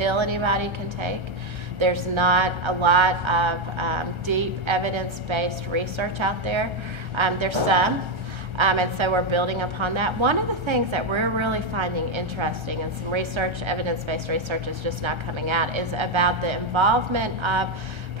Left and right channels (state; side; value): late; left; 1.3 ms